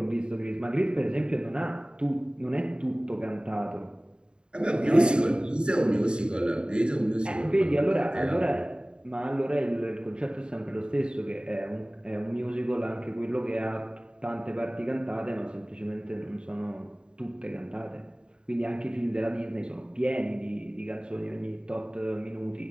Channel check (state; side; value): late; left; 0.050 ms